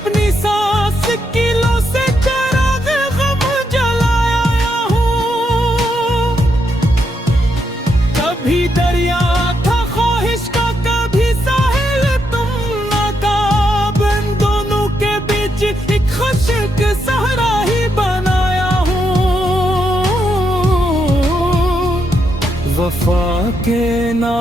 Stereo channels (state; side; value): normal; both; correlation 0.80